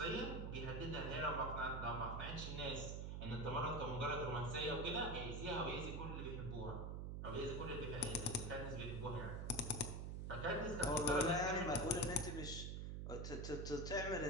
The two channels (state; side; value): noise; right; hum, 3 dB below the sound